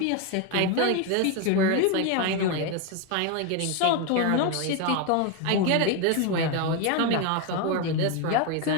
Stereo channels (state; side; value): different; both; correlation 0.02